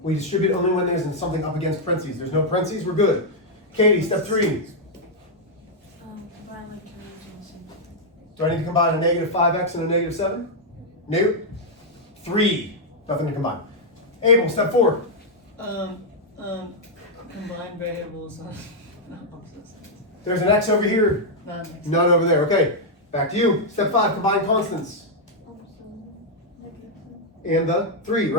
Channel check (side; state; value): both; normal; correlation -0.03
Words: we distribute only when there's something up against parentheses. There's no parentheses, we're good. Katie, step 3. Combine like terms and symbols. Do I need to combine a negative 5x and a negative 7? Nope. 3. Nothing to combine. Abel, step 4. Combine variables on opposite sides. There's an x over here, Not next. none over there. Okay, back to you. Step 5, combine constants. And the 3,